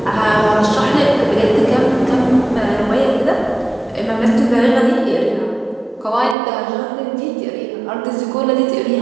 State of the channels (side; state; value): left; drops out; at 6.4 s